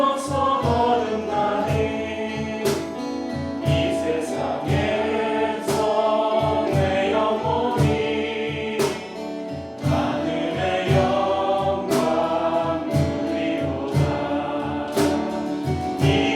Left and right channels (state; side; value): identical; both; correlation 1.00